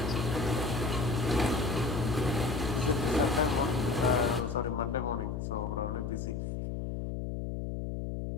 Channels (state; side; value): noise; left; hum, 4 dB below the sound